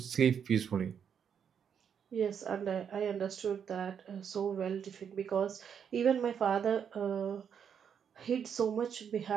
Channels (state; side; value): quieter; left; 7.7 dB